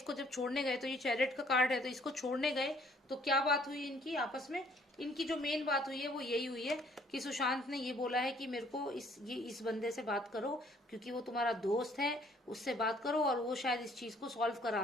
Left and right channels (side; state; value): both; normal; correlation 0.61